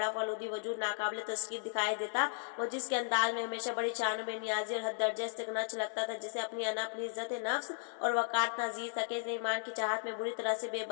फलूदी वजूद नाकाबिले तस्कीर दिखाई देता। वो जिसके अंदाज में हमेशा बड़ी शान बेनियाजी और हद दर्जे इस्तिगना छलकता था, जिसे अपनी अना, अपनी इज्जत नफ्स और वकात नाजीज था कि इसने ईमान की चाहत में बुरी तरह से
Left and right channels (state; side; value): silent; right; digital silence